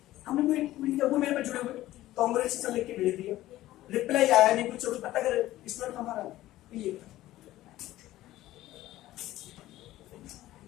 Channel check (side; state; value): right; quieter; 15.4 dB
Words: हमने कोई वो मेरे पे जुड़े हुए कांग्रेचुलेशन लिख के भेज दिया, रिप्लाई आया नहीं कुछ, पता कर स्टूडेंट हमारा ये